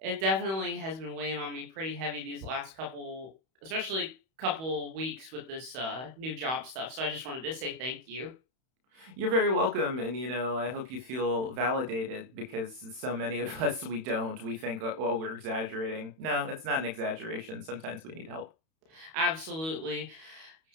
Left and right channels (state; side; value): late; left; 31 ms